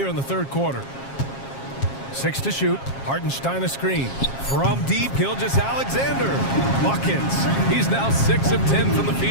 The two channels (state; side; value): late; right; 7.4 ms